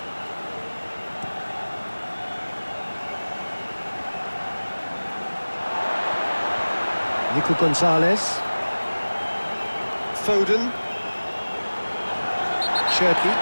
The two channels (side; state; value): both; inverted; correlation -1.00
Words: Nico Gonzalez. Foden. Cherky